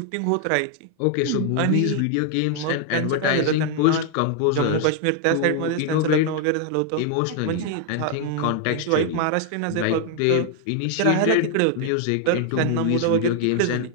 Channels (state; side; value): different; both; correlation 0.00